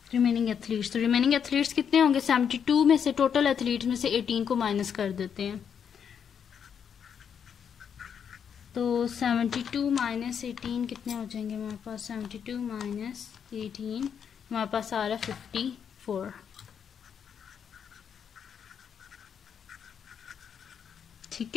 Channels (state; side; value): quieter; right; 7.6 dB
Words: रिमेनिंग एथलीट्स। तो रिमेनिंग एथलीट्स कितने होंगे 72 में से, टोटल एथलीट्स में से 18 को माइनस कर देते हैं, तो 72 माइनस 18 कितने हो जाएंगे हमारे पास, 72 माइनस 18 हमारे पास आ रहा है 54। ठीक